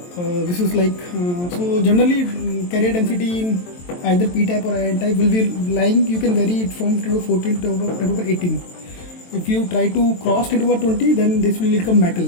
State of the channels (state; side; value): late; right; 23 ms